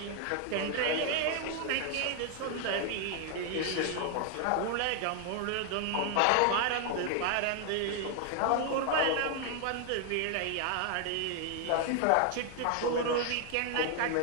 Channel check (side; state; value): both; different; correlation 0.00